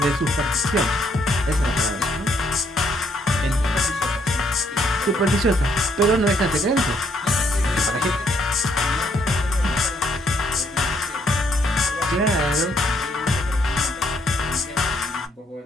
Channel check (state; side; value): normal; both; correlation 0.70